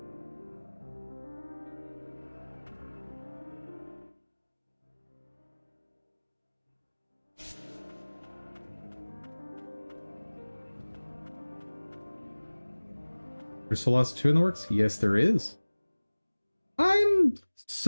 There's Solasta 2 in the works? Yes, there is. I'm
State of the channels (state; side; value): inverted; both; correlation -1.00